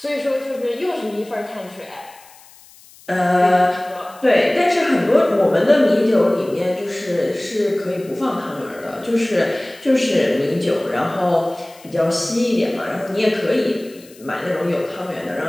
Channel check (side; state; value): left; noise; hiss, 24 dB below the sound